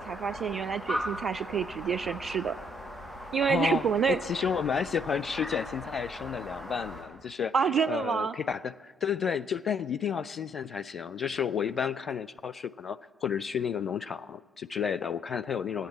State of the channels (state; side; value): normal; both; correlation 0.67